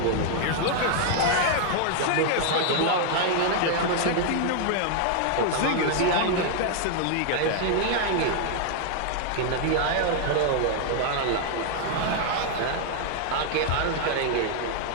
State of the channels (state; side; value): different; both; correlation 0.00